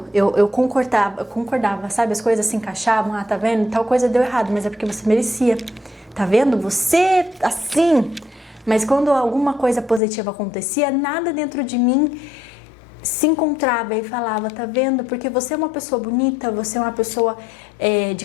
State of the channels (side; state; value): right; drops out; at 10.0 s